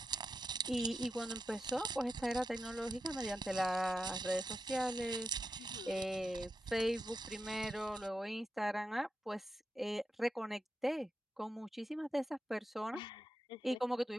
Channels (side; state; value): both; normal; correlation 0.88